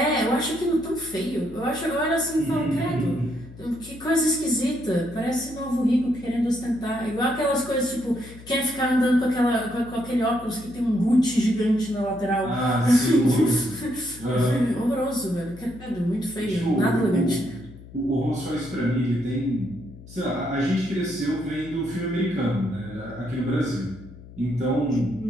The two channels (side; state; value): left; noise; hum, 18 dB below the sound